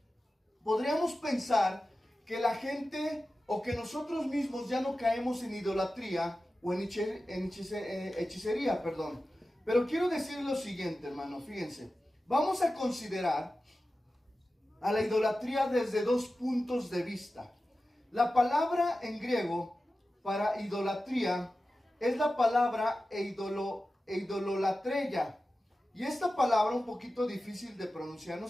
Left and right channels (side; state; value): both; normal; correlation 0.94